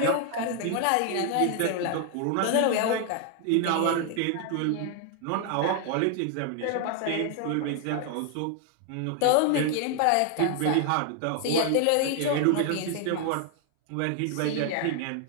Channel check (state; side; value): different; both; correlation 0.00